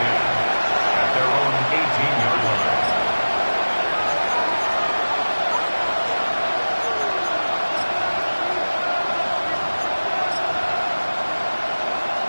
their own 18-yard line.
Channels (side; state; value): both; inverted; correlation -1.00